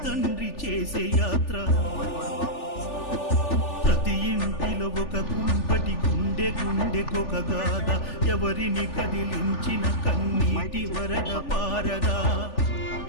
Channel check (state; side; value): late; right; 3.4 ms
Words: తండ్రి చేసే యాత్ర. ప్రతి ఇంటిలో ఒక కుంపటి గుండెకొక గాథ. ఎవరిని కదిలించిన కన్నీటి వరద పారదా.